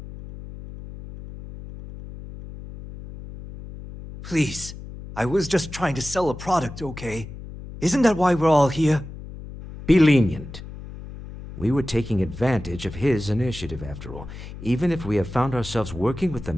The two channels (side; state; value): left; noise; hum, 13 dB below the sound